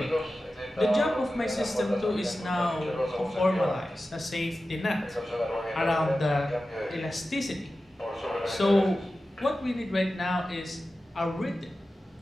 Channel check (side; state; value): both; normal; correlation 0.94